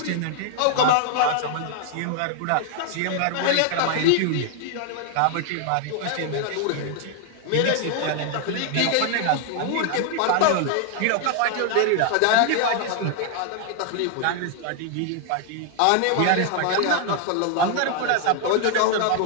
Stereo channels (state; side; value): different; both; correlation 0.00